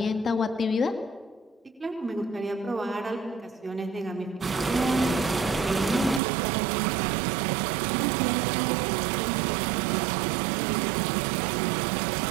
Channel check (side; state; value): left; drops out; at 6.2 s